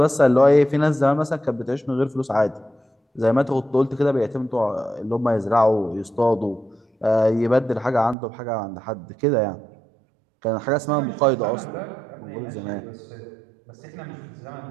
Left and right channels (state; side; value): drops out; left; at 8.2 s